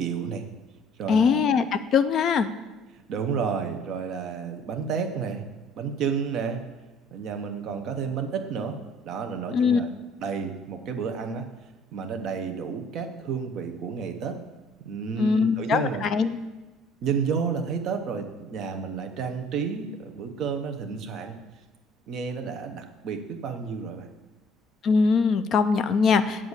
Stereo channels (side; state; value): both; normal; correlation 0.57